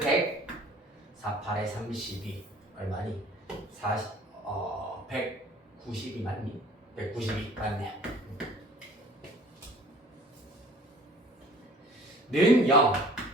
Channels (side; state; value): both; normal; correlation 0.50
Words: 48에 32 얼마니? 192 맞니? 192 맞네요. 는